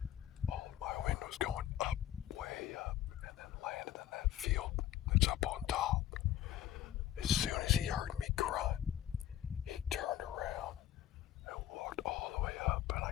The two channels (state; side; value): quieter; right; 12.0 dB